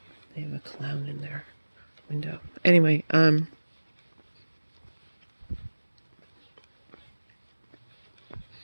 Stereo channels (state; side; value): inverted; both; correlation -1.00